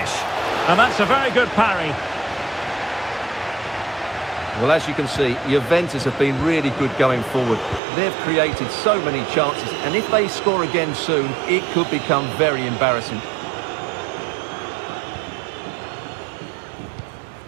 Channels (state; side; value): drops out; left; at 7.8 s